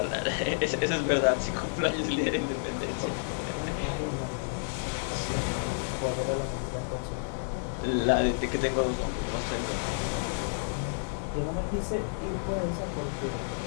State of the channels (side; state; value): right; silent; digital silence